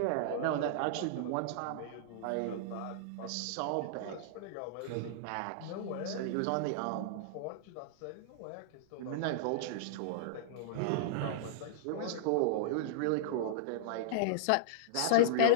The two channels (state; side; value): different; both; correlation -0.02